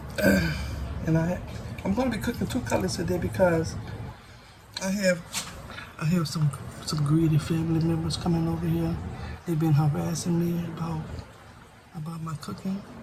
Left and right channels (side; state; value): both; identical; correlation 1.00